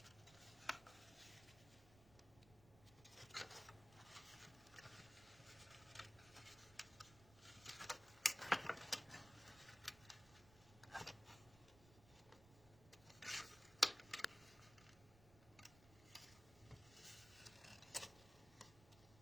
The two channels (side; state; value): right; noise; rumble, 20 dB below the sound